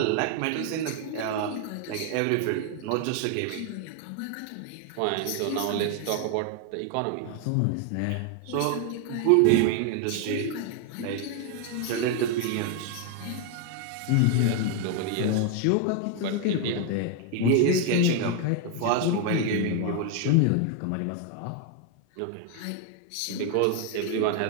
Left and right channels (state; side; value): different; both; correlation 0.01